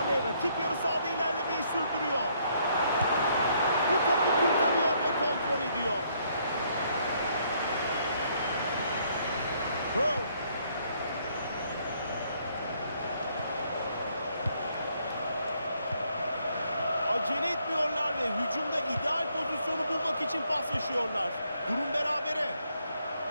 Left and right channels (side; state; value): both; inverted; correlation -0.69